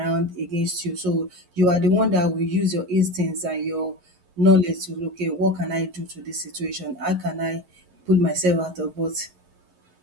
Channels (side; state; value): left; late; 11 ms